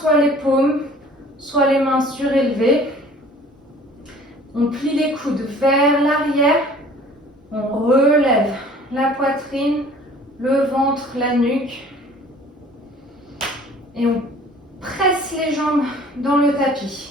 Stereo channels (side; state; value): both; normal; correlation 0.50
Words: soit les paumes, soit les mains surélevées. On plie les coudes vers l'arrière. On relève la poitrine, le ventre, la nuque. Et on presse les jambes dans le